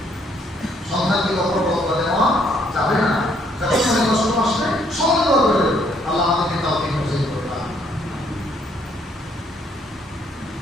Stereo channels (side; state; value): both; normal; correlation 0.68